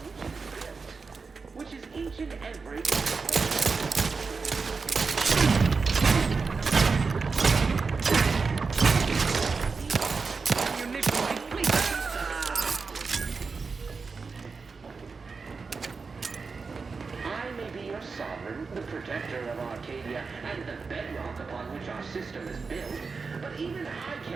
which is each and every... Sovereign, the protector of Arcadia, and the bedrock upon which our system is built, but even I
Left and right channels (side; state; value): left; quieter; 4.7 dB